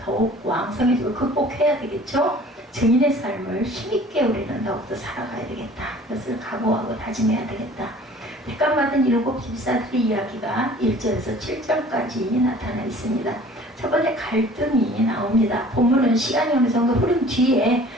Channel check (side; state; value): both; normal; correlation 0.49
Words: 더욱 왕성해지고 극복해야 되겠죠? 증인의 삶을 힘있게 우리는 더욱더 살아가야 되겠다. 그것을 각오하고 다짐해야 되겠다. 택감받은 7 집사들의 이야기가 1절에서 7절까지 나타나 있습니다. 첫 번째 갈등이 나옵니다. 본문은 시간이 어느 정도 흐른 뒤에